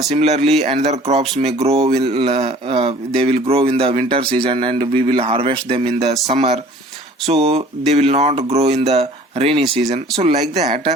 similarly another crops may grow they will grow in the winter season and we will harvest them in the summer. So they will not grow in the rainy season. So like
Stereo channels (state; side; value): normal; both; correlation 0.50